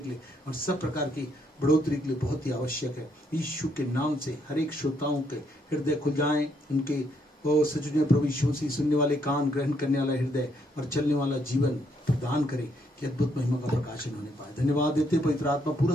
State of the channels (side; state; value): both; normal; correlation 0.73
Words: लिए और सब प्रकार की बढ़ोतरी के लिए बहुत ही आवश्यक है। यीशु के नाम से हर एक श्रोताओं के हृदय खुल जाएं, उनके वो सचुने प्रभु यीशु से सुनने वाले कान, ग्रहण करने वाला हृदय और चलने वाला जीवन प्रदान करे कि अद्भुत महिमा का प्रकाशन होने पाए। धन्यवाद देते पवित्र आत्मा